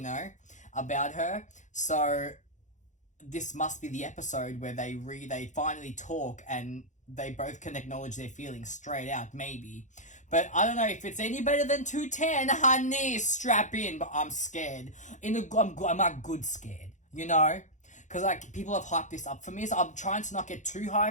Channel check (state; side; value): late; right; 0.35 ms